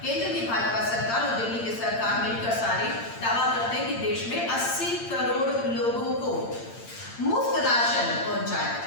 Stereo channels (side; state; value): right; late; 8.8 ms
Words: केंद्र की भाजपा सरकार और दिल्ली की सरकार मिलकर सारे दावा करते हैं कि देश में 80 करोड़ लोगों को मुफ्त राशन पहुंचाया